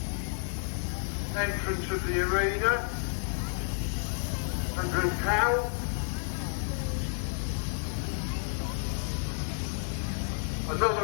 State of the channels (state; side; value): silent; right; digital silence